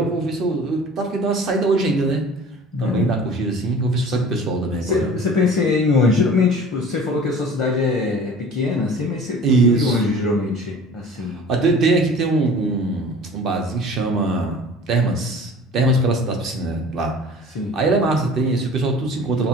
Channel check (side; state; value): both; normal; correlation 0.44